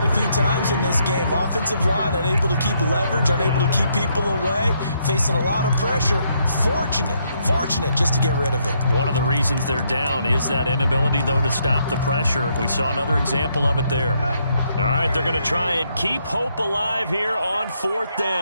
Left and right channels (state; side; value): inverted; both; correlation -0.74